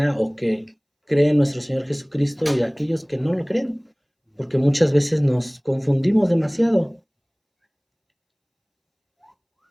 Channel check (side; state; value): both; identical; correlation 1.00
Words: o que cree en nuestro Señor Jesucristo y a aquellos que no lo creen, porque muchas veces nos confundimos demasiado.